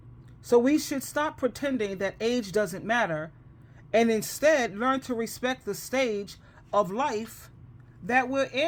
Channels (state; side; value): identical; both; correlation 1.00